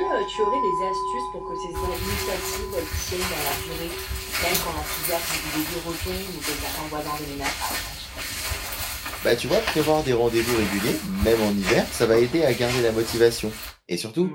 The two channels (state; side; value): identical; both; correlation 1.00